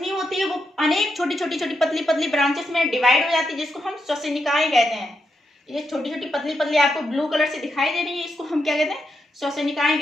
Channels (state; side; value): normal; both; correlation 0.83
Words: होती है वो अनेक छोटी पतली ब्रांचेस में डिवाइड हो जाती है, जिसको हम श्वसनिकाएं कहते हैं। ये छोटी पतली आपको ब्लू कलर से दिखाई दे रही है, इसको हम क्या कहते हैं, श्वसनिकाएं